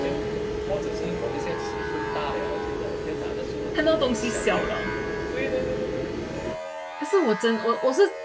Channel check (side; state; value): both; identical; correlation 1.00